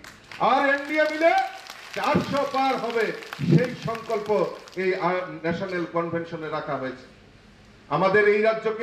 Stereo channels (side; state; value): both; identical; correlation 1.00